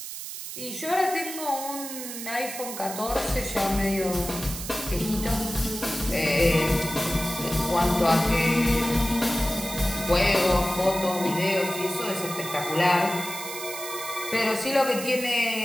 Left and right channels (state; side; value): noise; right; hiss, 8 dB below the sound